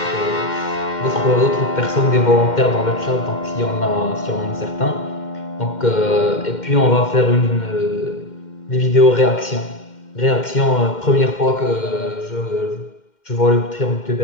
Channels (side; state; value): right; late; 2.1 ms